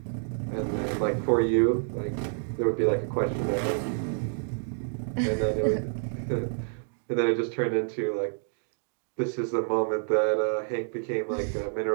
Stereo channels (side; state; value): left; silent; 59 dB below the other